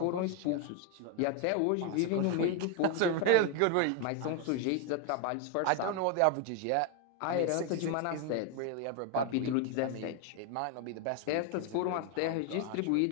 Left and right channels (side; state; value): both; different; correlation 0.01